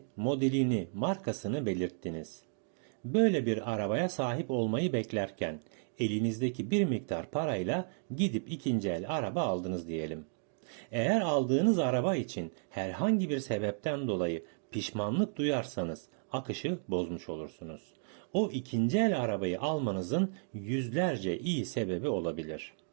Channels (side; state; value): left; silent; digital silence